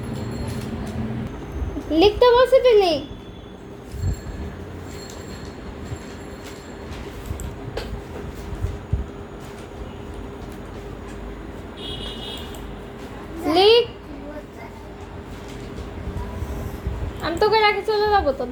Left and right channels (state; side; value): identical; both; correlation 1.00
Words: লিখতে বলছি, তুই লিখ। লিখ। আমি তোকে রাখে চলে যাবো তো,